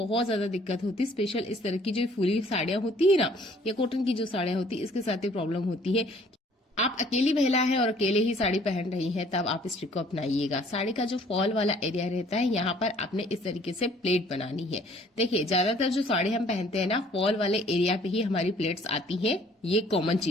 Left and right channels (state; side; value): normal; both; correlation 0.58